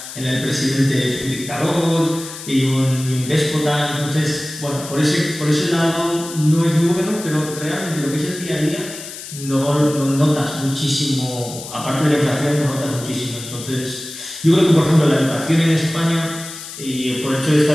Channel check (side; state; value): left; noise; hiss, 12 dB below the sound